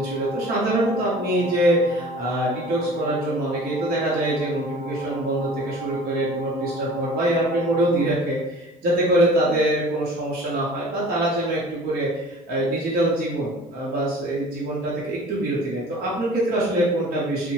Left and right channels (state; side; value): normal; both; correlation 0.45